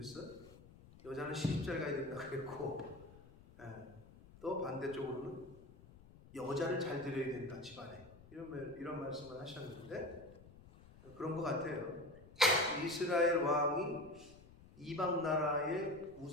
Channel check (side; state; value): left; noise; rumble, 21 dB below the sound